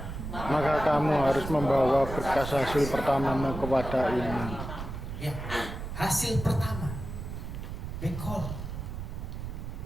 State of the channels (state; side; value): noise; right; rumble, 7 dB below the sound